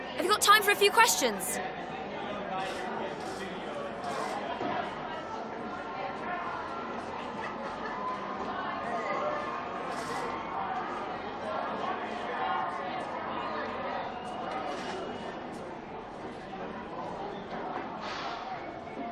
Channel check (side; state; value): both; identical; correlation 1.00